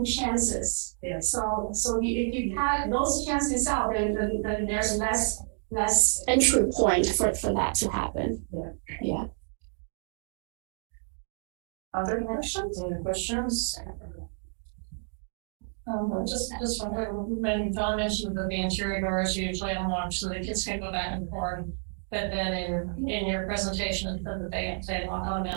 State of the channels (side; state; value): left; silent; 58 dB below the other